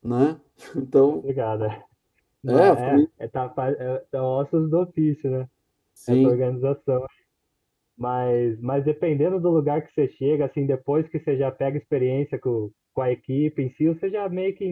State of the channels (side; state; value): both; identical; correlation 1.00